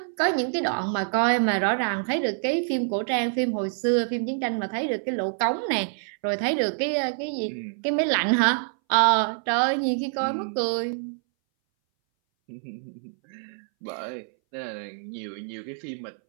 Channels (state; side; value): silent; left; 60 dB below the other